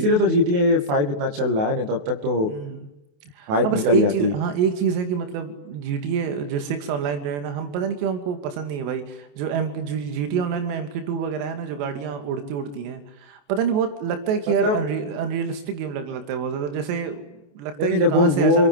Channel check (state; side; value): late; left; 28 ms